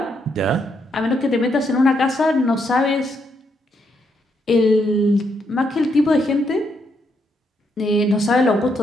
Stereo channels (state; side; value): normal; both; correlation 0.77